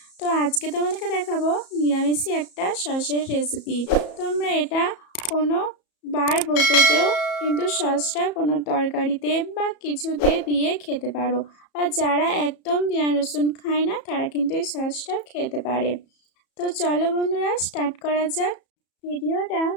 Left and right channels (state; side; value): late; right; 34 ms